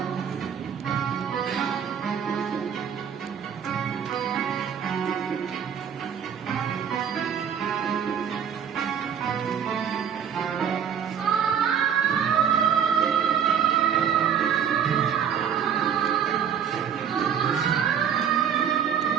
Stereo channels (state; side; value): quieter; left; 8.1 dB